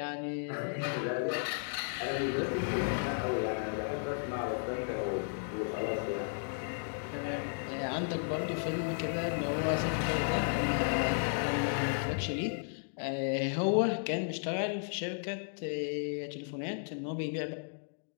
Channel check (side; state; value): right; silent; digital silence